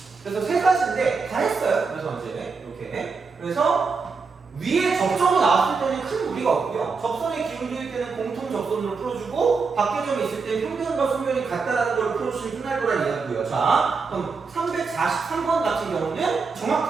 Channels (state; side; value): quieter; left; 4.8 dB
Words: 그래서 세 가지인데 다 했어요. 그래서 이제 이렇게 그래서 위에 접점이 나왔을 때는 큰 무리가 없고요. 접선의 기울기일 때는 공통 접선으로 풀어주고 밖에점이 있을 때 평면과 소면이 같다라는 걸 풀어주시면 끝날 거란 이야기고요. 자, 그럼 343번 같은 경우는